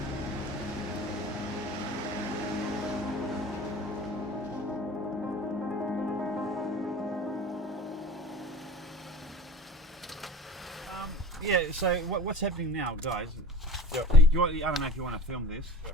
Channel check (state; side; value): normal; both; correlation 0.40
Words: Yeah. So what's happening now, guys? Yeah. I don't know if you want to film this.